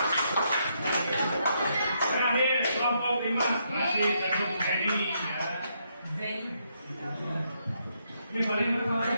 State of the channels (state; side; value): inverted; both; correlation -0.77